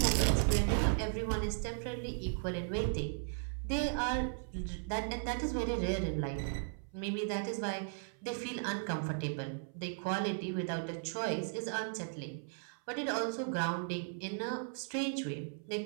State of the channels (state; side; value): silent; left; 53 dB below the other